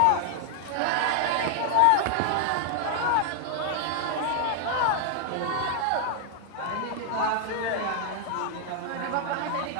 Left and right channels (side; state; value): both; different; correlation 0.00